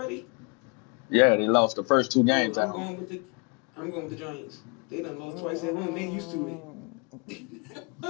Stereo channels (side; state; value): right; quieter; 32.8 dB